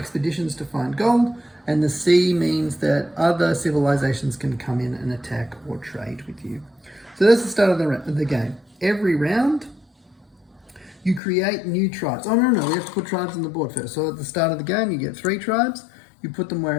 to find gold, and the sea means that other civilizations can come in and attack or trade with you. So that's the start of the game. Every round, you create new tribes. Oh, no, we have to put tribes on the board first. So at the start of the game, you get 3 tribes. You put them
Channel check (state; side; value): drops out; right; at 11.2 s